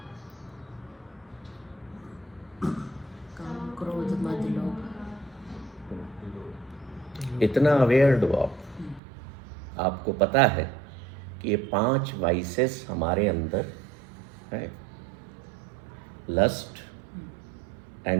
इतना अवेयर्ड हो आपको पता है कि ये 5 वाइसेस हमारे अंदर है। लस्ट,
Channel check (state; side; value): drops out; left; at 9.0 s